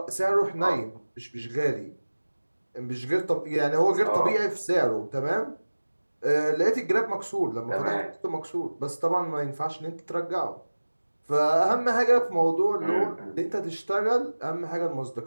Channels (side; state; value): both; inverted; correlation -1.00